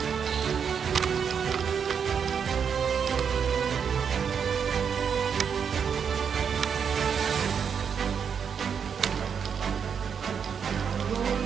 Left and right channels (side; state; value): left; quieter; 7.0 dB